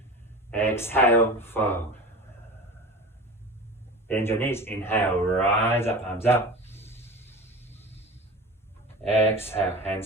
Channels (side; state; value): both; normal; correlation 0.33